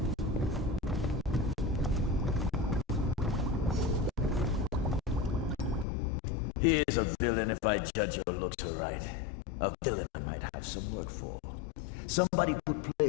He is a villain if I judge your looks aright. A villain I might have some work for. Somebody put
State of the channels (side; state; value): right; drops out; at 5.9 s